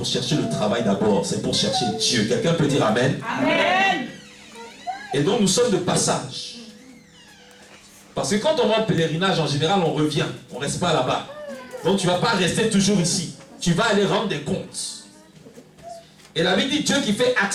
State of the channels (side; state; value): both; identical; correlation 1.00